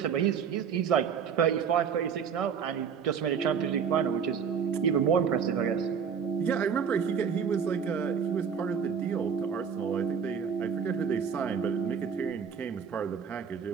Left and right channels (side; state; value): left; quieter; 7.0 dB